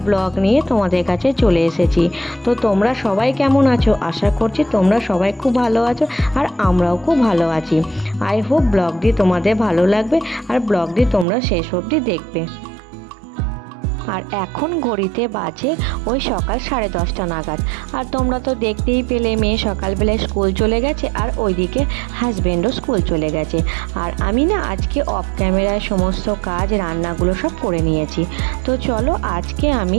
ব্লগ নিয়ে তোমাদের কাছে চলে এসেছি। তো তোমরা সবাই কেমন আছো? আশা করছি তোমরা সবাই খুব ভালো আছো, আর আমরাও খুব ভালো আছি। আই হোপ ব্লগটি তোমাদের ভালো লাগবে আর ব্লগটি তোমরা শেষ অবধি দেখবে। আর এখন ঘড়িতে বাজে ওই সকাল 10:30 নাগাদ। আর তোমরা তো দেখতেই পেলে মেয়ে সকালবেলায় স্কুল চলে গেছে আর ওইদিকে হাজব্যান্ডও স্কুল চলে গেছে। আর আমি না আজকে অফ ক্যামেরায় সমস্ত কাজ রান্নাগুলো সব করে নিয়েছি। তো চলো আজকে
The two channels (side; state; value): left; drops out; at 11.2 s